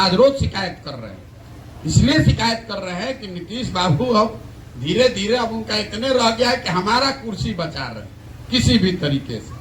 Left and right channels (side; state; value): both; identical; correlation 1.00